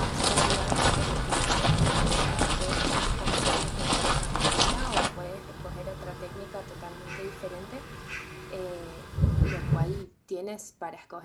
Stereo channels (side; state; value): both; identical; correlation 1.00